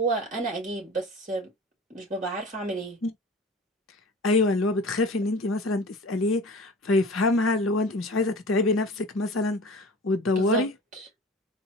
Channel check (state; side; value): normal; both; correlation 0.38